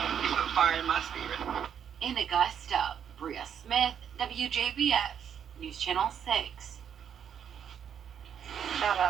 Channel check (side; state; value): left; quieter; 8.4 dB